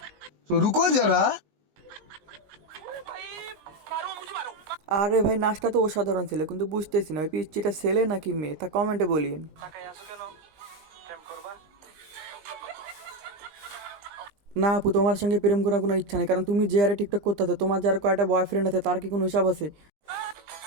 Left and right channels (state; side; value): late; left; 19 ms